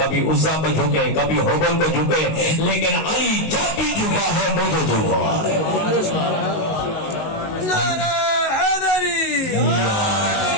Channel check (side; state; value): right; late; 19 ms